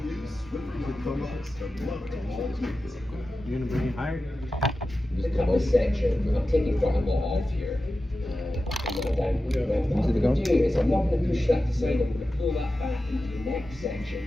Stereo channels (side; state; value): both; normal; correlation 0.93